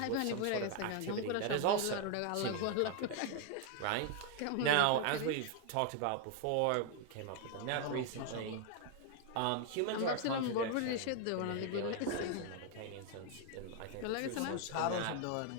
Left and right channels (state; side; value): different; both; correlation 0.00